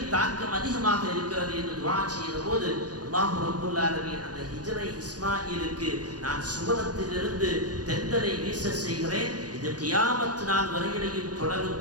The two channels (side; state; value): left; late; 0.69 ms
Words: தாக்கம் அதிகமாக இருக்கிறது என்று துஆ செய்த போது அல்லாஹ் ரப்பல் ஆலமீன் அந்த ஹிஜ்ரை இஸ்மாயிலுக்கு நான் சுவனத்திலிருந்து தென்றலை வீச செய்கிறேன், இது கியாமத் நாள் வரையிலையும் தொடரும்